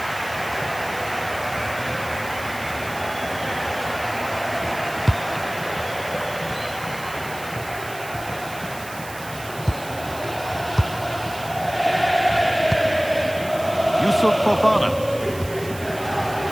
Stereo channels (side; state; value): right; noise; hiss, 15 dB below the sound